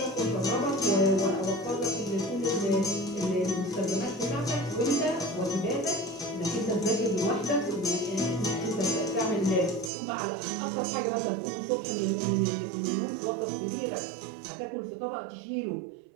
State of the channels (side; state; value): left; drops out; at 9.9 s